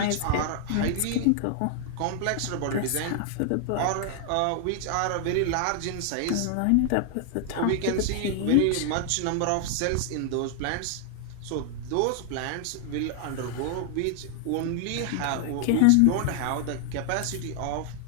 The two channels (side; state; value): both; different; correlation 0.00